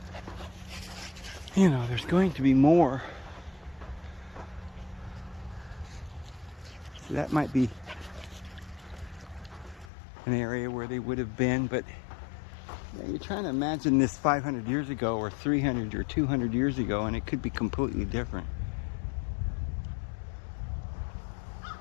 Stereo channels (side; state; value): right; drops out; at 9.9 s